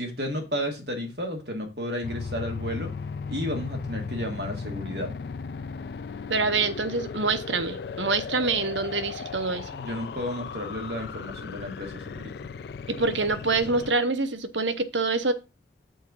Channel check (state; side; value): normal; both; correlation 0.05